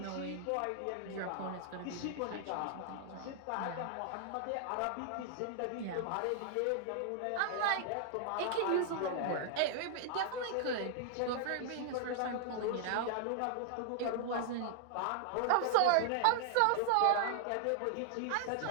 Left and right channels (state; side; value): different; both; correlation -0.01